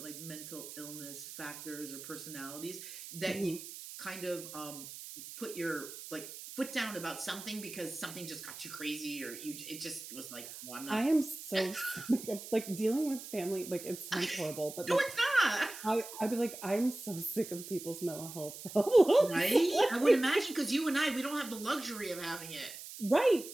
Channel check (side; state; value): right; noise; hiss, 12 dB below the sound